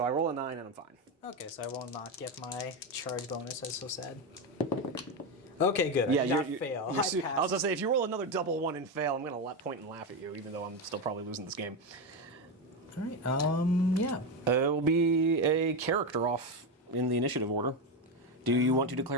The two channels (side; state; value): both; normal; correlation 0.12